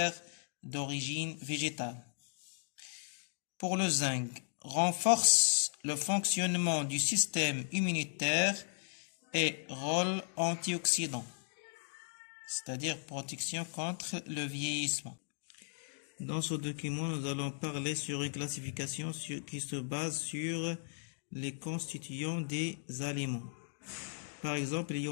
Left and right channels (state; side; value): silent; right; digital silence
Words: d'origine végétale. Pour le zinc, renforce le fonctionnement du système immunitaire et rôle antioxydant, c'est-à-dire protection contre le vieillissement. Dans ce document, nous allons parler sur une classification qui se base sur les constituants des aliments. Par exemple, il y